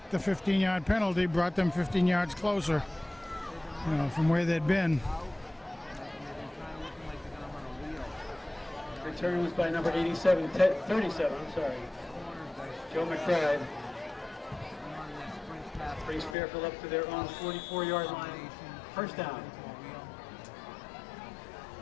the 15-yard penalty, brought them 15 yards closer, you know, from where they'd been. Return was by number 37, 37, I'm sorry. Joe McBride. Brings Fairfield up to their own 44-yard line. First down.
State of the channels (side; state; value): right; drops out; at 16.4 s